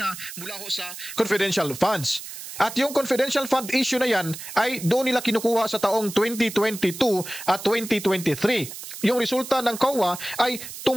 mula ho sa confidential funds. At yung confidential fund issue na yan ay doon nila kinukuha sa taong 2022 at 2023. Yung resulta ng COA ay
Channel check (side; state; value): right; noise; hiss, 11 dB below the sound